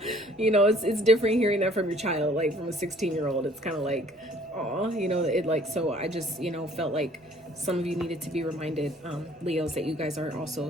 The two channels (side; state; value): both; normal; correlation 0.57